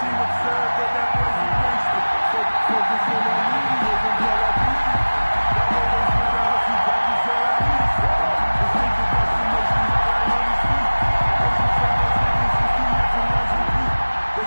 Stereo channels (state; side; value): inverted; both; correlation -1.00